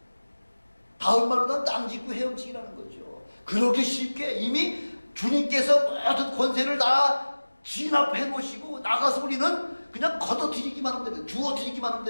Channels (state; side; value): inverted; both; correlation -1.00